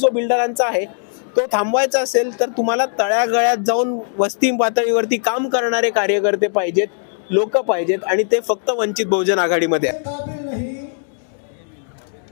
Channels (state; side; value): silent; right; digital silence